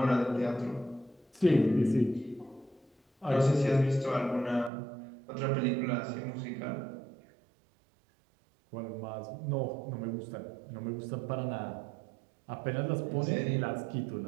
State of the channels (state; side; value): drops out; left; at 4.7 s